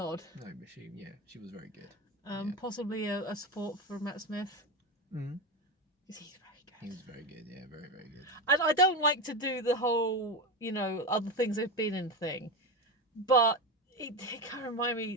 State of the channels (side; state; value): both; normal; correlation 0.17